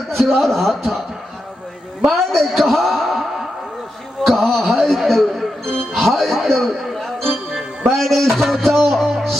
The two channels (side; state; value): both; normal; correlation 0.87